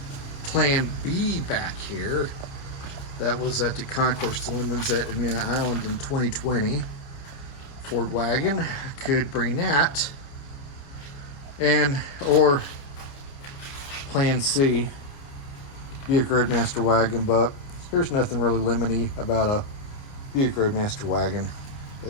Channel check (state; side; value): late; right; 29 ms